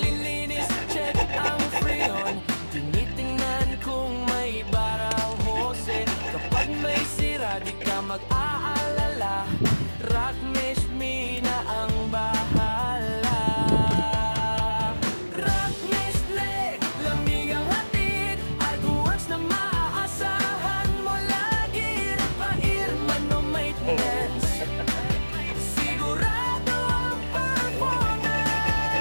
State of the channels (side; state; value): both; inverted; correlation -1.00